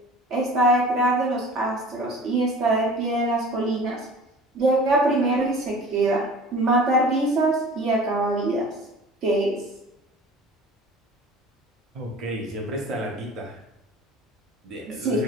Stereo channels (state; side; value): normal; both; correlation 0.42